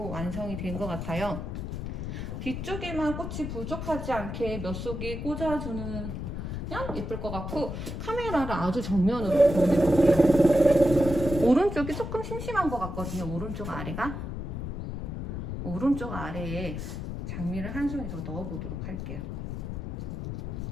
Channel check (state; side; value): noise; left; rumble, 5 dB below the sound